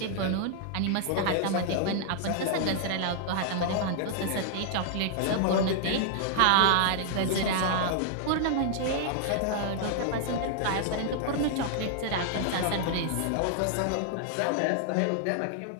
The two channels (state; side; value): different; both; correlation 0.00